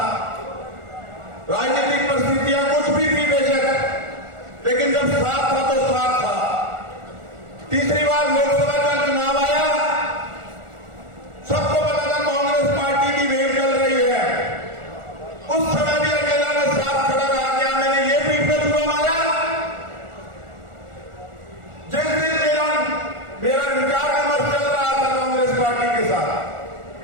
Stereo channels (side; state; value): left; late; 1.4 ms